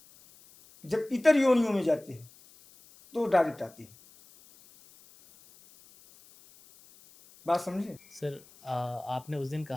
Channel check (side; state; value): left; noise; hiss, 25 dB below the sound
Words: जब इतर योनियों में जाते हैं तो डायरेक्ट आते हैं। बात समझे? सर, आपने उस दिन